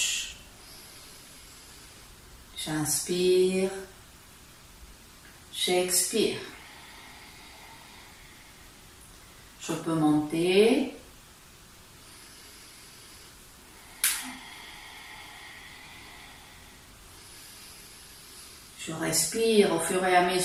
j'inspire, j'expire. Je peux monter. Je respire au fur et à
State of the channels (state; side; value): identical; both; correlation 1.00